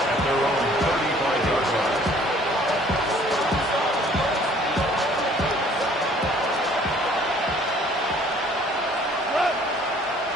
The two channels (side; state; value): both; normal; correlation 0.56